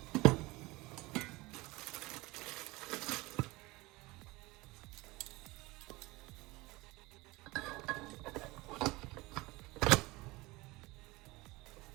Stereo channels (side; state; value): left; quieter; 22.0 dB